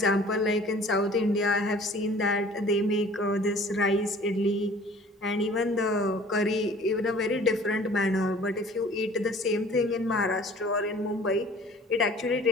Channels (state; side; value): normal; both; correlation 0.49